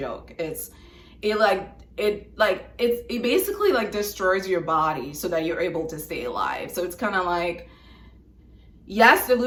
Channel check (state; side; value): identical; both; correlation 1.00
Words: It basically like destroys your body so that you're able to stay alive. So it's kind of like, yes, the